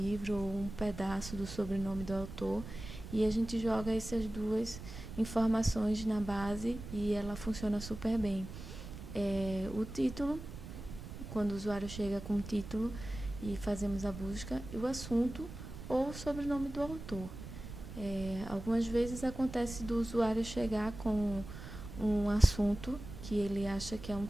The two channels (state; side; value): noise; right; rumble, 11 dB below the sound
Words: ou um pedaço do sobrenome do autor. E a gente joga essas duas informações na base e ela funciona super bem. O título, quando o usuário chega com o título e fazemos a busca, e o assunto ou o sobrenome do autor. Algumas vezes acontece do usuário chegar com um assunto que ele acha que é um